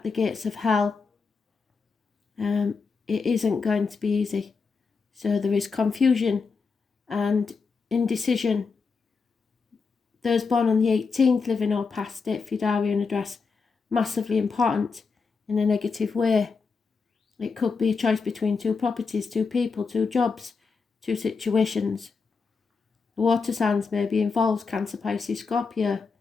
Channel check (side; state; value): right; quieter; 4.9 dB